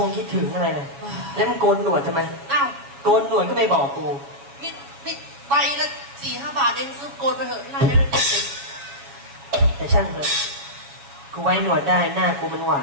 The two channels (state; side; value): late; left; 7.2 ms